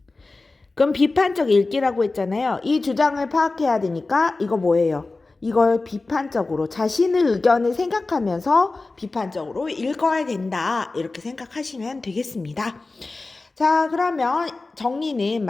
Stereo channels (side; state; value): right; quieter; 3.5 dB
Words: 그럼 비판적 읽기라고 했잖아요. 이 주장을 파악해야 되니까 이거 뭐예요? 이걸 비판적으로 자신의 의견을 생각하면서 비판적으로 읽어야 된다. 이렇게 생각하시면 되겠습니다. 자, 그러면 정리는